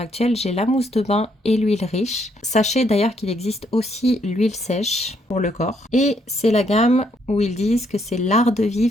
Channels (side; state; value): both; normal; correlation 0.72